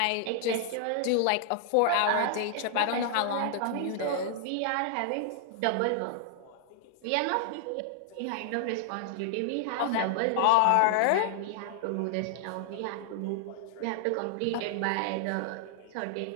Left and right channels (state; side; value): different; both; correlation 0.00